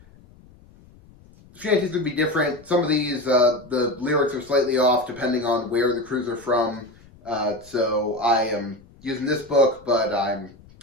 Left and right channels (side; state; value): left; noise; rumble, 25 dB below the sound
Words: Shanties would be different. Some of these, the lyrics are slightly off depending on where the crews are from. So I am using this book, but I'm